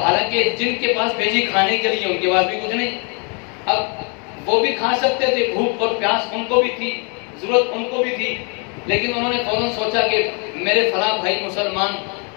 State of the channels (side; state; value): right; quieter; 35.8 dB